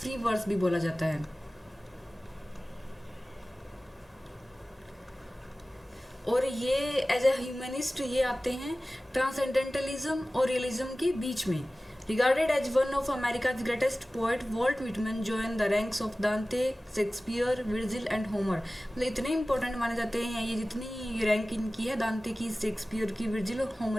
वर्स भी बोला जाता है। और ये एज ए ह्यूमनिस्ट ये आते हैं ट्रांसेंडेंटलिज्म और रियलिज्म के बीच में। Regarded as one of America's greatest poet, Walt Whitman join the ranks of Dante, Shakespeare, Virgil and Homer. मतलब इतने इंपॉर्टेंट माने जाते हैं ये, जितनी रैंक इनकी है दांते की, शेक्सपियर की, विर्जिल और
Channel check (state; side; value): normal; both; correlation 0.97